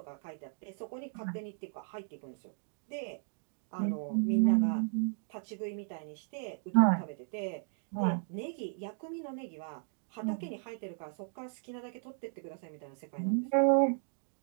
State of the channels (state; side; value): silent; left; 54 dB below the other